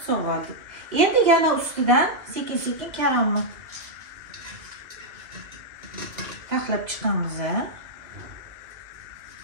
sog'ardik. Endi yana ustidan sekin-sekin karamni taxlab chiqamiz.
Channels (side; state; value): left; late; 2.4 ms